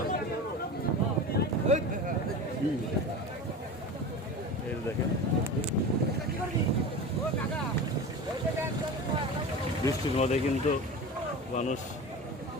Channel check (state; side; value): normal; both; correlation 0.30